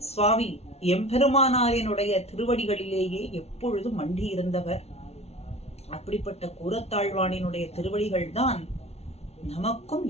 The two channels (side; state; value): right; late; 0.31 ms